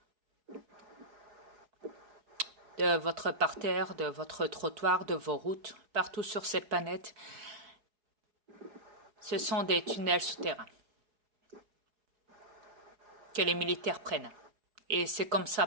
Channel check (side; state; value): left; late; 4.8 ms